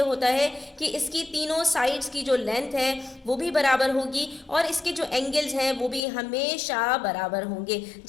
होता है कि इसकी तीनों साइड्स की जो लेंथ है वो भी बराबर होगी और इसके जो एंगल्स हैं वो भी हमेशा बराबर होंगे।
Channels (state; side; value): drops out; right; at 6.0 s